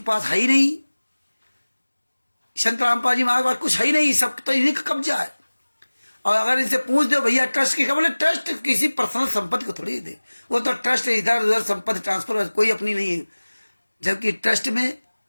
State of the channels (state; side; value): inverted; both; correlation -1.00